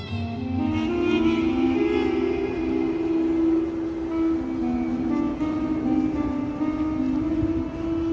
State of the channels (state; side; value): identical; both; correlation 1.00